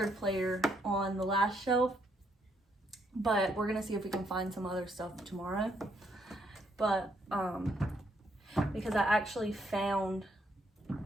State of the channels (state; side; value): normal; both; correlation 0.73